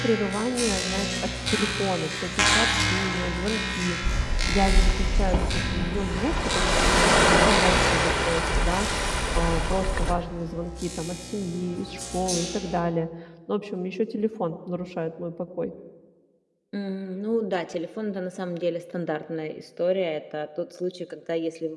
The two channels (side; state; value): both; identical; correlation 1.00